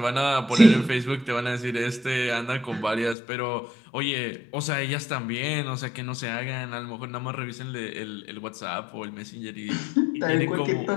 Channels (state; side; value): drops out; right; at 3.2 s